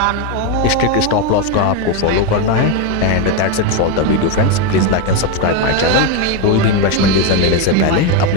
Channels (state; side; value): different; both; correlation 0.03